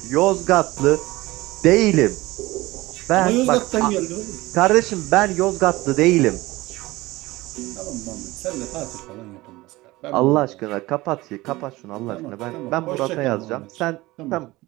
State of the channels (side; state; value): left; quieter; 19.7 dB